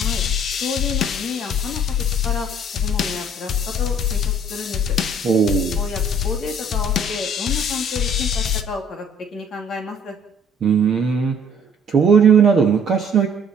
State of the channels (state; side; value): normal; both; correlation 0.57